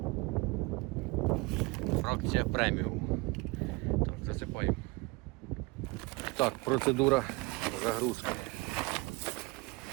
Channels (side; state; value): left; quieter; 25.3 dB